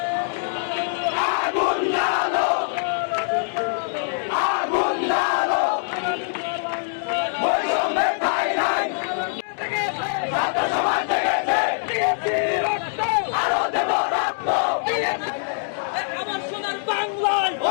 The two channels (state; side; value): silent; right; 63 dB below the other